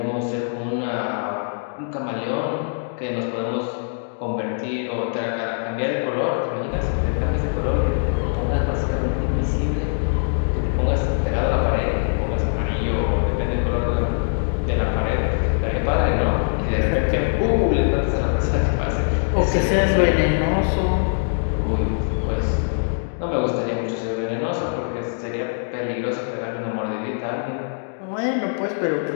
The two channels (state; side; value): silent; right; digital silence